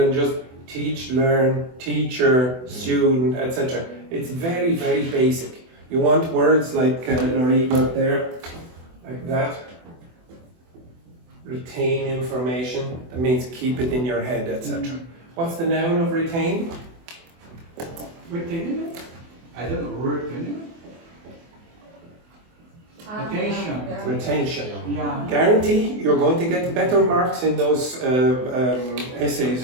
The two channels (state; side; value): late; left; 24 ms